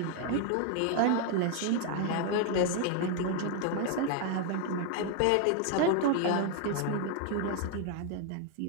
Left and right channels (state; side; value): different; both; correlation 0.00